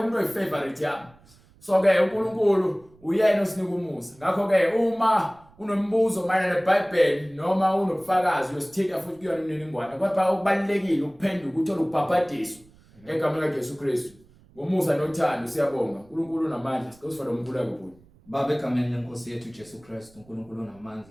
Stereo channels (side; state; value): right; noise; rumble, 28 dB below the sound